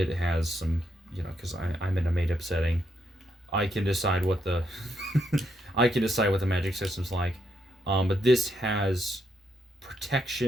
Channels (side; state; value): both; normal; correlation 0.78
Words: has some, because I'm in a made up setting, I can decide what the I can decide what the magic system's like. But this has